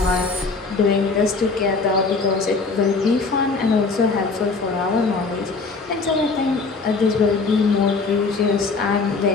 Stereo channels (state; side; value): quieter; right; 4.3 dB